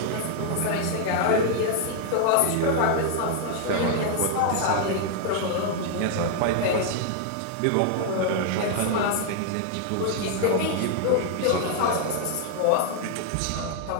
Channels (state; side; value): different; both; correlation 0.00